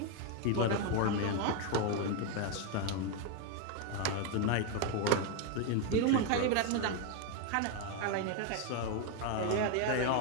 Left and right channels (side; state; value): both; different; correlation 0.01